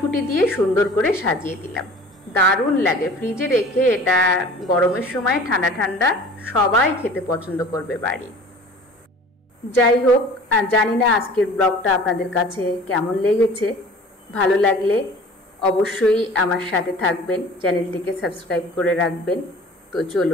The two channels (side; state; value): both; normal; correlation 0.44